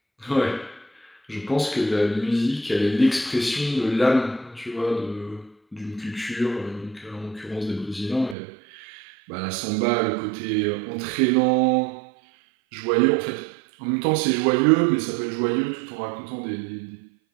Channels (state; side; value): drops out; left; at 8.3 s